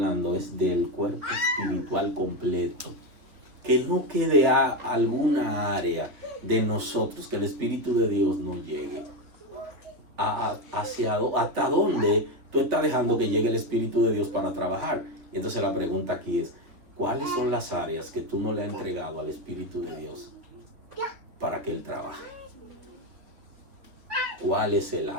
es del cuerpo espiritual completo. Que no quede alguna área de nosotros, que el Espíritu de Dios no llegue. ¿Hasta dónde tú estás dejando que llegue el Espíritu de Dios para trabajar? Y entonces la pregunta aquí es, ¿cuáles son las áreas que tú no le has entregado al Espíritu de Dios para que Él trabaje? ¿Cuál es el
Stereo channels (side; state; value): left; late; 3.6 ms